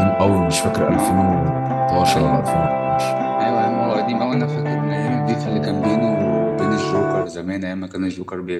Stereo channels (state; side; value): identical; both; correlation 1.00